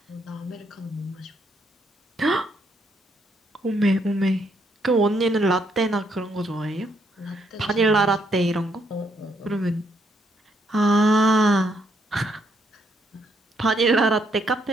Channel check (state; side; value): normal; both; correlation 0.73